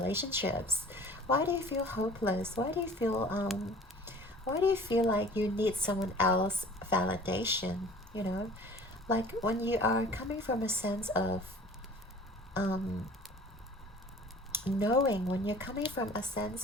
Why do you feel hopeless? Why do you feel like you need someone else validation? Like when you are coming from a sense of knowing, when you're coming from a sense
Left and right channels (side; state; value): both; normal; correlation 0.46